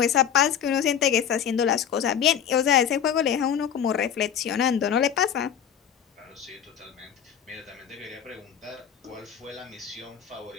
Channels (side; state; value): right; quieter; 8.7 dB